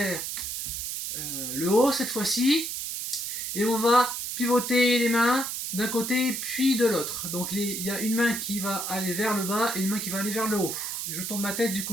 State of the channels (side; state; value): right; noise; hiss, 4 dB below the sound